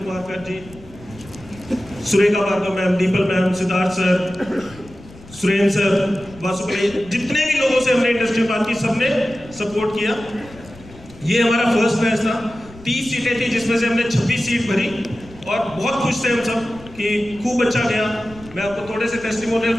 कर ji, Surekha Bhargava ma'am, Deepal ma'am, Siddharth sir, Surendra sir, Vasupriya, जितने भी लोगों से हमने इंडस्ट्री में बात की सबने सपोर्ट किया। ये हमारा फर्स्ट बैच था, 30 सीटें थी जिसमें से हमने 26 सीट भरी और बहुत खुश थे हम सब कि खूब अच्छा गया। मैं आपको थोड़े से टेस्टिमोनियल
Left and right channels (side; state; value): left; noise; rumble, 20 dB below the sound